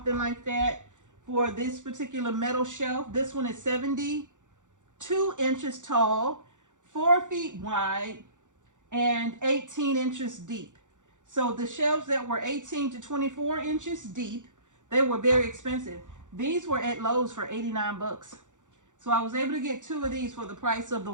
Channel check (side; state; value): left; late; 0.86 ms